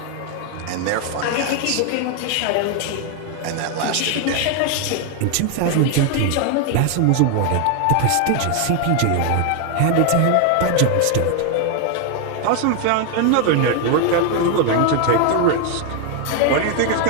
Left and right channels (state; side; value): different; both; correlation 0.00